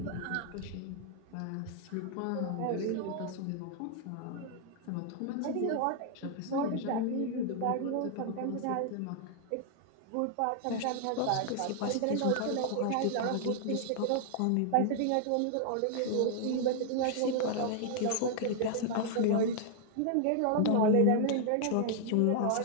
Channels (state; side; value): different; both; correlation 0.00